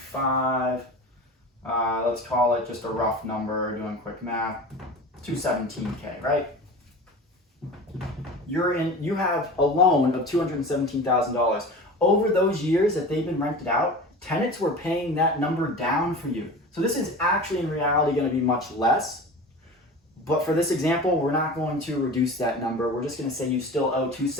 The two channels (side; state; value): both; normal; correlation 0.35